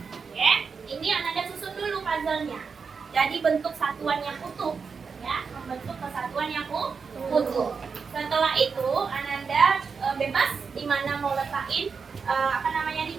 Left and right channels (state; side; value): quieter; left; 5.5 dB